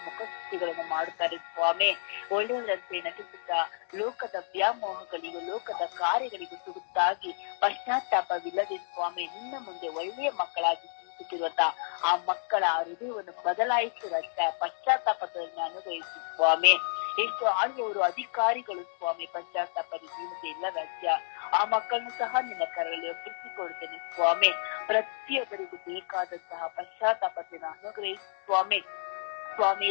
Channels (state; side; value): silent; right; digital silence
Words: ಮುಖಸ್ತುತಿಗಳನ್ನು ಮಾಡುತ್ತಾರೆ ಸ್ವಾಮಿ. ಒಳ್ಳೆಯವರಂತೆ ನಟಿಸುತ್ತಾ ಲೋಕದ ವ್ಯಾಮೋಹಗಳಿಗೂ ಲೋಕದ ಕಾರ್ಯಗಳಿಗೂ ತುಗುತ್ತಾಗಿ ಪಶ್ಚಾತ್ತಾಪವಿಲ್ಲದೆ ಸ್ವಾಮಿ ನಿನ್ನ ಮುಂದೆ ಒಳ್ಳೆಯ ಮಕ್ಕಳಾಗಿ ಜೀವಿಸುತ್ತಿರುವಂತ ಆ ಮಕ್ಕಳ ಹೃದಯವನ್ನು ಬದಲಾಯಿಸು ರಾಜ. ಪಶ್ಚಾತ್ತಾಪವನ್ನು ಅನುಗ್ರಹಿಸು ಸ್ವಾಮಿ. ಎಷ್ಟು ಆಳುವವರು, ಅಧಿಕಾರಿಗಳು ಸ್ವಾಮಿ ಪಶ್ಚಾತ್ತಾಪದ ಜೀವನತೆ ಇಲ್ಲ ರಾಜ್ಯ. ಆ ಮಕ್ಕಳನ್ನು ಸಹ ನಿನ್ನ ಕರಗಳಲ್ಲಿ ಒಪ್ಪಿಸಿಕೊಡ್ತೇನೆ ಸ್ವಾಮಿ. ಪ್ರತಿಯೊಬ್ಬರಿಗೂ ಬೇಕಾದಂತಹ ಪಶ್ಚಾತ್ತಾಪತೆಯನ್ನು ಅನುಗ್ರಹಿಸು ಸ್ವಾಮಿ. ಸ್ವಾಮಿ